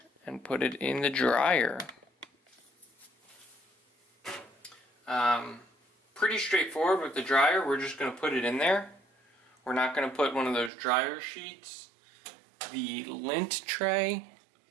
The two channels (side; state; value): left; drops out; at 10.7 s